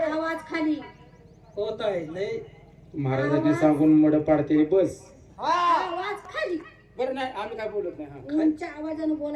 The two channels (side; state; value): both; identical; correlation 1.00